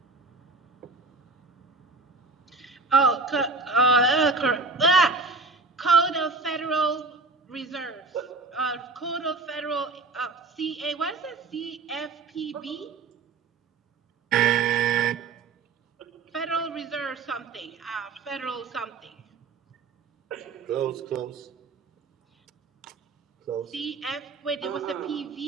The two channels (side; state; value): left; quieter; 3.8 dB